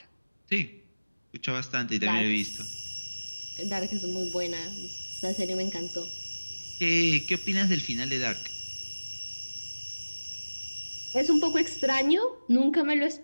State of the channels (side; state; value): both; inverted; correlation -1.00